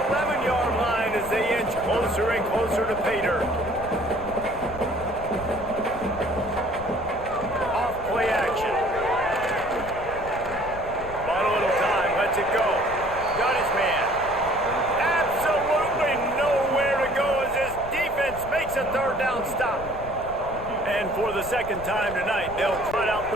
11-yard line as they inch closer and closer to pay dirt. Off-play action. Bought a little time, lets it go. Got his man. Absolutely nowhere to go as this defense makes a third down stop. And for the second time tonight, they'll trot out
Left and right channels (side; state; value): left; noise; rumble, 13 dB below the sound